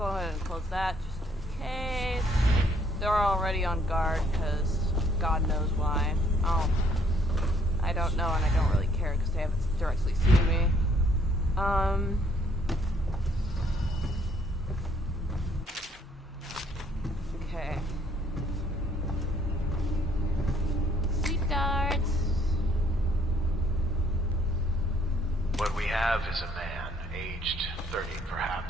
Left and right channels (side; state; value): both; normal; correlation 0.65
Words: ahead and close that just in case. They're already on guard because God knows why. I don't know, and I don't really care because they haven't directly seen me. Okay. Seat guards. What we have is a man, aged 30